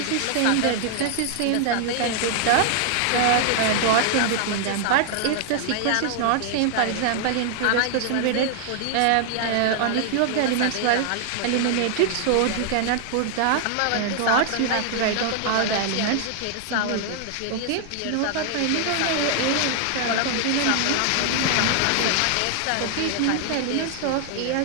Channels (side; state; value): both; different; correlation 0.00